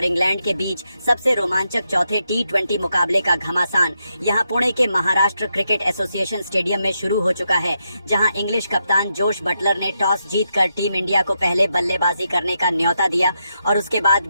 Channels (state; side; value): inverted; both; correlation -0.83